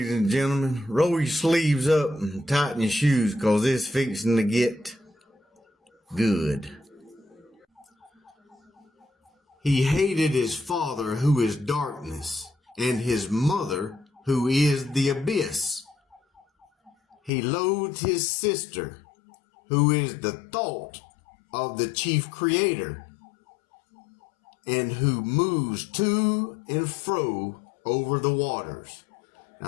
and gentlemen, roll your sleeves up and tighten your shoes because it's fixing to get good. He hated his father, who is darkness, and his mother, who is the abyss. He loathed his sister, who is the thought of the chief creator, and who moves to and fro over the waters.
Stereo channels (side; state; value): right; drops out; at 17.3 s